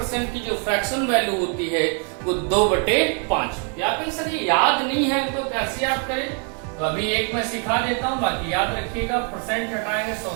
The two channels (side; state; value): left; quieter; 38.0 dB